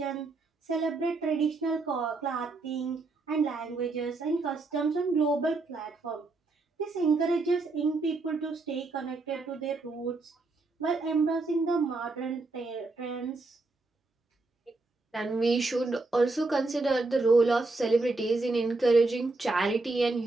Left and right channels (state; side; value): quieter; left; 3.4 dB